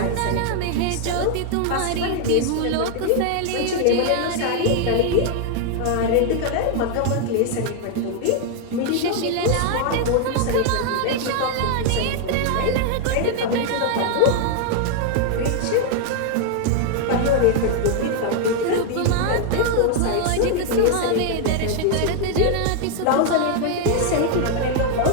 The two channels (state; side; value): different; both; correlation 0.00